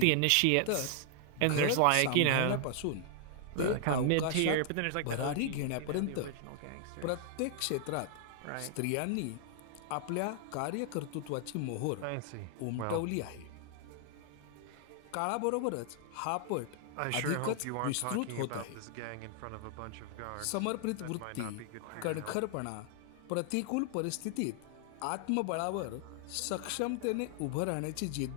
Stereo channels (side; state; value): both; different; correlation 0.00